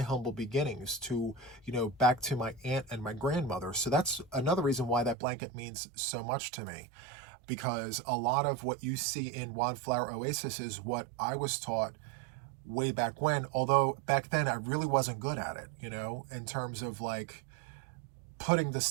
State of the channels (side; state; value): left; drops out; at 5.2 s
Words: beginnings, to, you know, back to my aunt and my grandmother. So that's another reason why that blanket means so much to me, because a lot of what you see in Wildflower Oasis is what I was taught way back when, although back then I really wasn't good at it, you know, in terms of like putting the